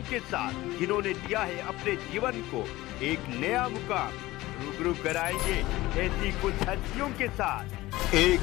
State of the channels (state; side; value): quieter; right; 18.2 dB